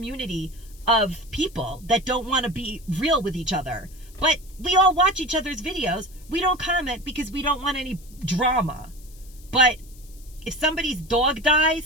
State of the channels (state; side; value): noise; left; hiss, 24 dB below the sound